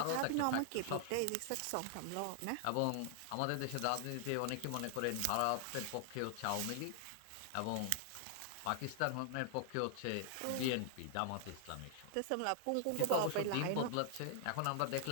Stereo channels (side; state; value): both; different; correlation 0.00